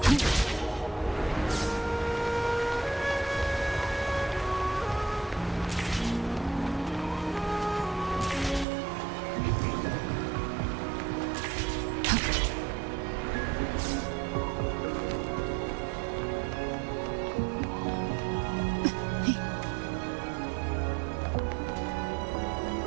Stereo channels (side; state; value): left; drops out; at 8.7 s